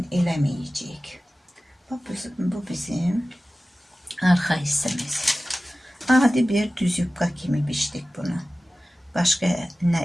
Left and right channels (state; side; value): normal; both; correlation 0.96